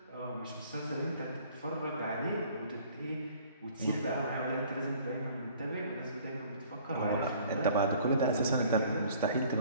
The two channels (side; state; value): both; inverted; correlation -0.54